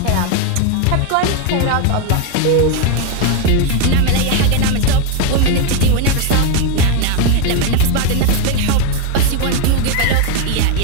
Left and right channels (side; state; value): both; different; correlation 0.01